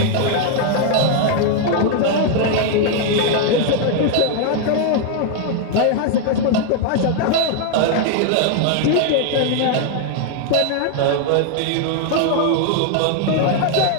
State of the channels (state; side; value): different; both; correlation 0.00